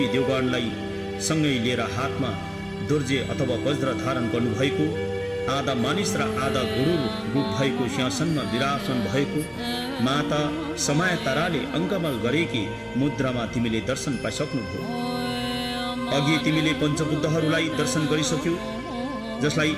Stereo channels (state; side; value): identical; both; correlation 1.00